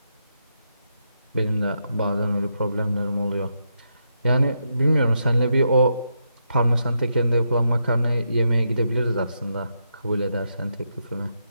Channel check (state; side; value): inverted; both; correlation -0.82